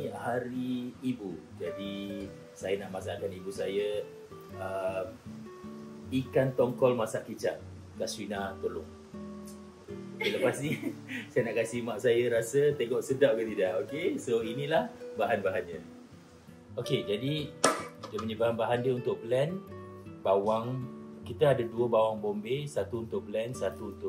hari ibu. Jadi saya nak masakkan ibu saya ikan tongkol masak kicap. Kaswina tolong. Okay, lepas ni saya nak kasih mak saya rasa tengok sedap ke tidak. Okey, so inilah bahan-bahannya. Okey, jadi dia punya bahan-bahan dia untuk blend bawang. Kita ada 2 bawang bombay, satu untuk blend, satu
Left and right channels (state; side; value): identical; both; correlation 1.00